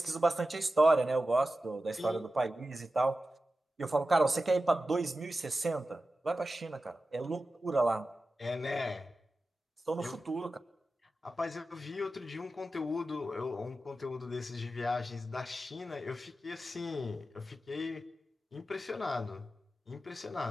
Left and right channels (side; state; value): both; normal; correlation 0.93